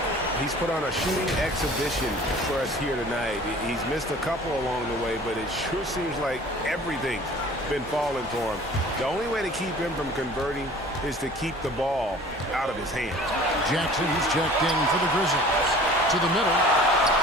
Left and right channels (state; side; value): normal; both; correlation 0.46